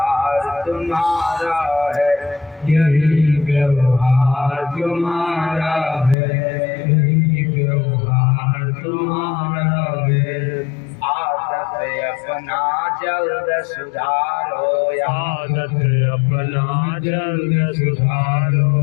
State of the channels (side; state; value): right; drops out; at 6.2 s